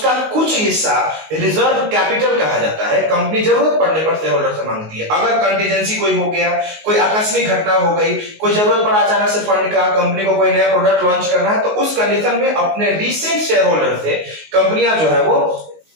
कुछ हिस्सा रिजर्व कैपिटल कहा जाता है। कंपनी जरूरत पड़ने पर शेयर होल्डर से मांगती है। अगर कंटीजेंसी कोई हो गया, कोई आकस्मिक घटना हो गई, कोई जरूरत पड़ा अचानक से फंड का, कंपनी को कोई नया प्रोडक्ट लॉन्च करना है, तो उस कंडीशन में अपने रीसेंट शेयर होल्डर से कंपनियां जो है वो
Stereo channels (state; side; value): late; left; 19 ms